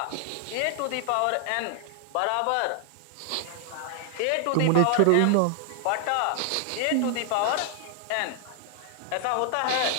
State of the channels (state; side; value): different; both; correlation 0.00